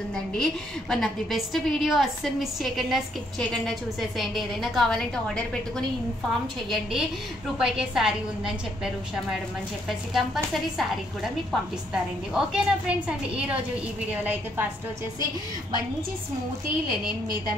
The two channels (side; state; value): both; normal; correlation 0.71